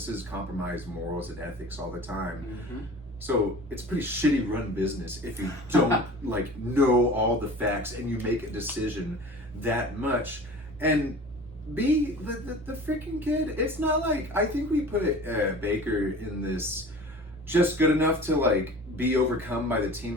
compromise morals and ethics all the time. Mm-hmm. So it's a pretty shitty run business if you don't like know all the facts and you make a decision that much. And B, the freaking kid, it's not like, I think we put Baker in this just good enough to like be overcome by the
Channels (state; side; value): normal; both; correlation 0.41